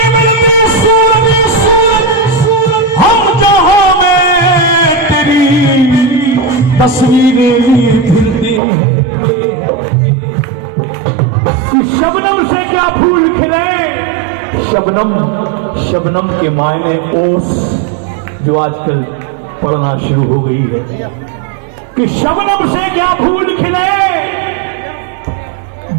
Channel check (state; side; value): drops out; left; at 8.6 s